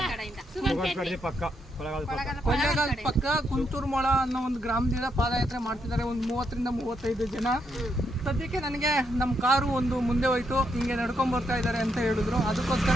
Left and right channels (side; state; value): both; normal; correlation 0.78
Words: ಕೊಳ್ಳೇಗಾಲ ಪಕ್ಕ ಕುಂತೂರ್ಮೊಳ ಅನ್ನೋ ಒಂದು ಗ್ರಾಮದಿಂದ ಪಾದಯಾತ್ರೆ ಮಾಡ್ತಿದ್ದಾರೆ. ಒಂದು 30 ರಿಂದ 35 ಜನ. ಸದ್ಯಕ್ಕೆ ನನಗೆ ನಮ್ಮ ಕಾರು ಒಂದು ಮುಂದೆ ಹೋಯ್ತು, ಹಿಂಗೆ ನಡ್ಕೊಂಡ್ ಬರ್ತಾ ಇದ್ದಾರೆ ಅಂತ ಹೇಳಿದ್ರು.